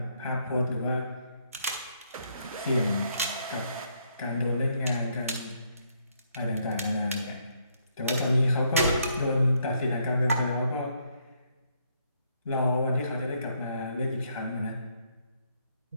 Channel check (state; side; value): inverted; both; correlation -0.72